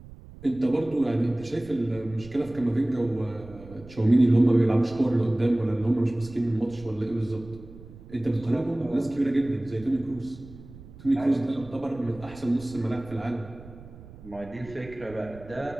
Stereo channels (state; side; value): noise; right; rumble, 18 dB below the sound